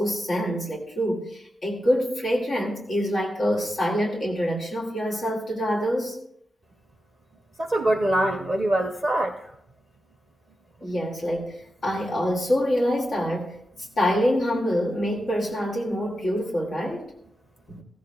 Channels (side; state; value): both; normal; correlation 0.89